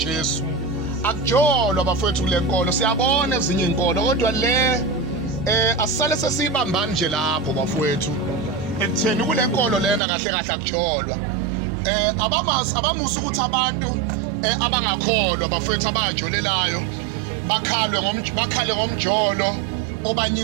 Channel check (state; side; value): drops out; left; at 10.0 s